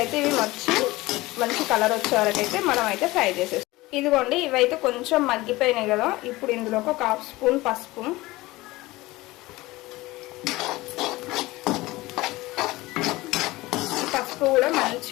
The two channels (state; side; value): quieter; right; 19.8 dB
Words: ఇవి మంచి కలర్ వచ్చే వరకు అయితే మనం అయితే ఫ్రై చేసేస్తాం. ఇదిగోండి, ఇవైతే కొంచెం మగ్గిపోయినాయి కదా. ఇప్పుడు ఇందులోకి ఒక హాఫ్ స్పూన్ పసుపు, పసుపు కూడా